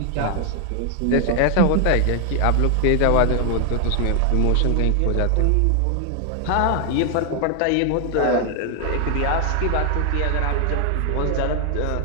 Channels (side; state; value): both; different; correlation 0.00